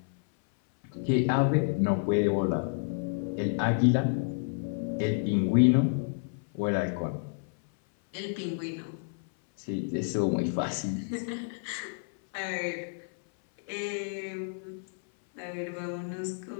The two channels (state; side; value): silent; right; 57 dB below the other